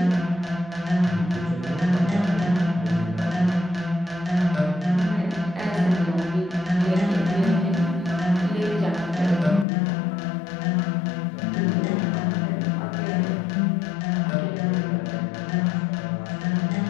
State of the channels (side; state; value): right; drops out; at 9.7 s